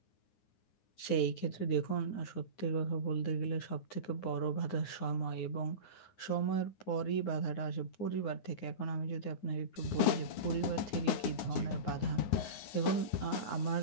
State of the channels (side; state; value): right; late; 9.6 ms